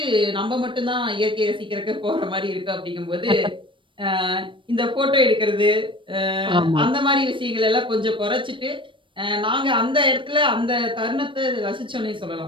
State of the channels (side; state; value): left; late; 0.24 ms